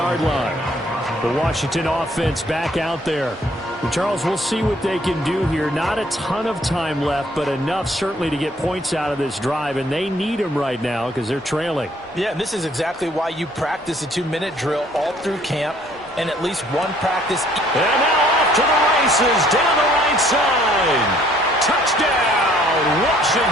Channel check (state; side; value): normal; both; correlation 0.61